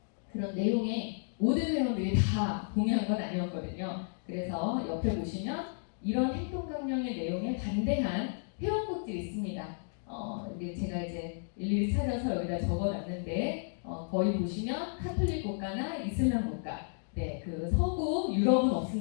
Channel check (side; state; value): right; silent; digital silence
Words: 그런 내용에 모든 회원들이 다 동의한 건 아니었거든요. 그래서 옆에 보시면 이런 행동 강령의 내용에 반대한 회원국들이 있습니다. 이게 제가 이제 일일이 찾아서 여기다 적어놨는데 거의 보시면 카톨릭 국가나 이슬람 국가, 네, 그 서구 유럽은